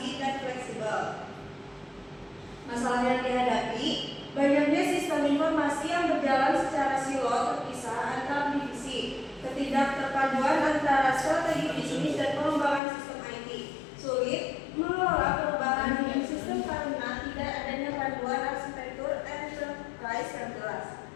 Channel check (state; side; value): drops out; right; at 12.8 s